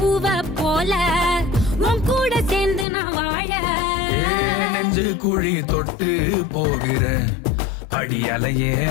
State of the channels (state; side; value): drops out; right; at 2.9 s